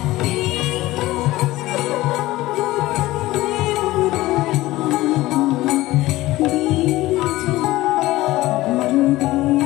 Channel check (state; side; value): quieter; right; 17.7 dB